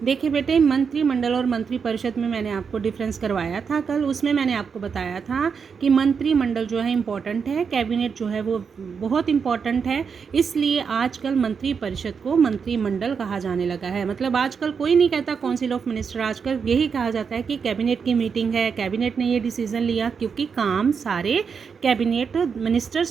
देखिए बेटे, मंत्रिमंडल और मंत्रिपरिषद में मैंने आपको डिफरेंस करवाया था कल। उसमें मैंने आपको बताया था कि मंत्रिमंडल जो है इम्पॉर्टेंट है, कैबिनेट जो है वो बहुत इम्पॉर्टेंट है। इसलिए आजकल मंत्रिपरिषद को मंत्रिमंडल कहा जाने लगा है। मतलब आजकल कोई नहीं कहता काउंसिल ऑफ मिनिस्टर, आजकल यही कहा जाता है कि कैबिनेट की मीटिंग है, कैबिनेट ने ये डिसीजन लिया, क्योंकि काम सारे कैबिनेट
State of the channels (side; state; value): left; quieter; 6.1 dB